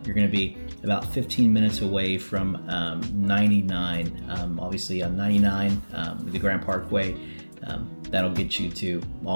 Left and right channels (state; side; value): inverted; both; correlation -1.00